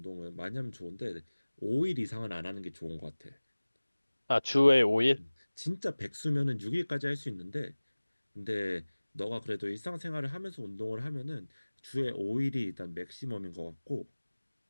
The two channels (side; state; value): both; inverted; correlation -1.00